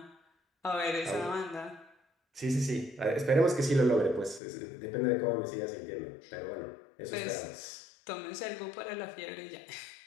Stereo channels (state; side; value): drops out; right; at 4.4 s